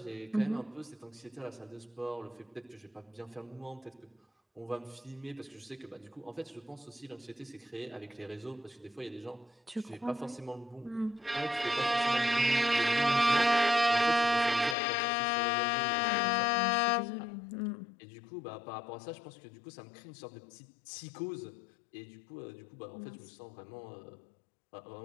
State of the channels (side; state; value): right; drops out; at 14.8 s